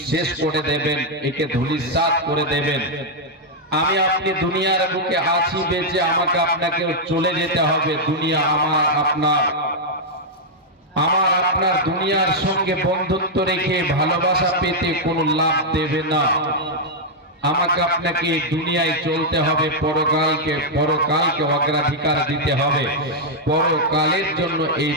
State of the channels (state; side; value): normal; both; correlation -0.03